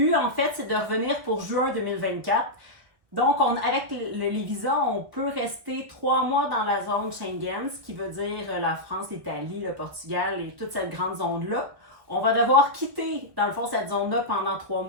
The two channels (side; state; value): left; late; 1.3 ms